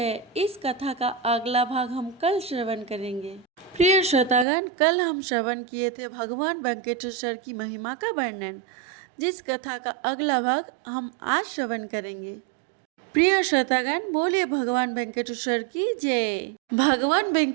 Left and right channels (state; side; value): drops out; left; at 4.5 s